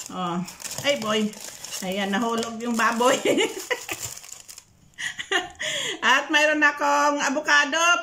Oh. Ay boy. Ayan, nahulog yung baboy. At mayroon akong avocado.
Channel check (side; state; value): both; identical; correlation 1.00